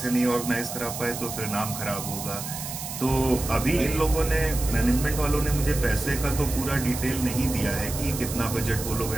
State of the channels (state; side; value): noise; right; hiss, 8 dB below the sound